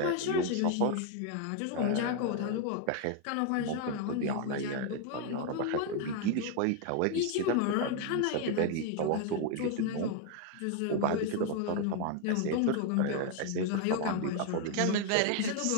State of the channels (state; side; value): different; both; correlation 0.00